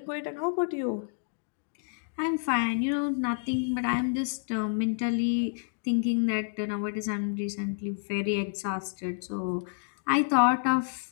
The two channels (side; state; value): right; silent; digital silence